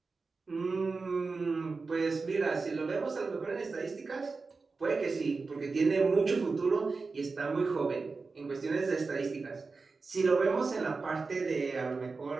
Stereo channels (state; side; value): quieter; left; 4.2 dB